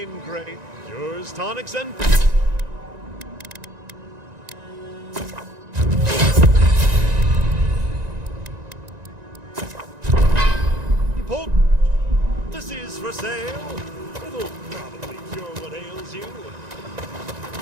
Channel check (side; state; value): left; late; 1.9 ms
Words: great cures, tonics, and... This is for sale. It'll probably cure what ails you.